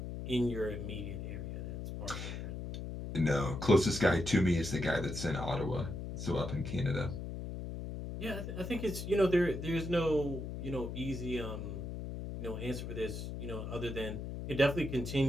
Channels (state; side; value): noise; left; hum, 6 dB below the sound